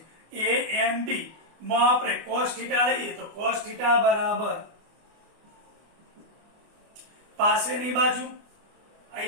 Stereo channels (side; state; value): left; late; 24 ms